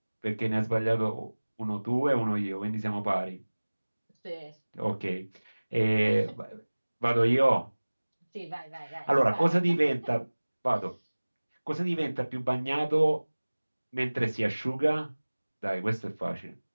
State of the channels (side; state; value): both; inverted; correlation -1.00